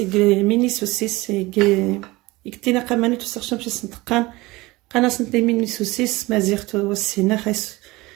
سوسيس يكتينا قماني توسخش باش سنتقان قنا سنتي ميني سوسيس مازيغتو والسينا خايس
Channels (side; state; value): left; quieter; 21.2 dB